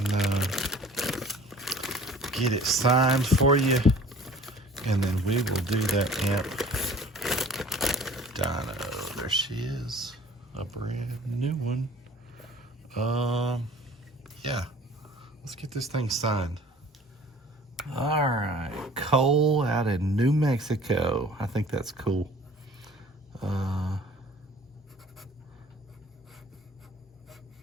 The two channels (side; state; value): both; normal; correlation 0.48